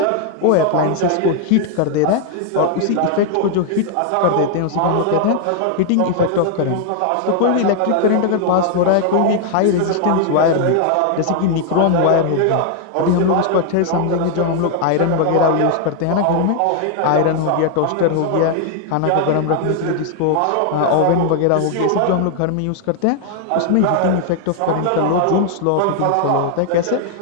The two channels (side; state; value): both; different; correlation 0.00